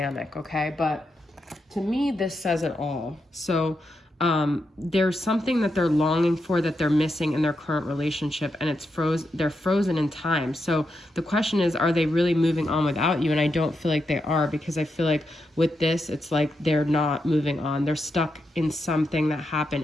okay? But to me, this says it all. So there's something that they're longing for that they're missing in their current relationship, and they're frozen in time. So the question is, are they really moving on without you? And I don't feel like they are, because I feel like with this, it's like they're not moving on. They're stuck in something that happened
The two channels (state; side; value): normal; both; correlation 0.85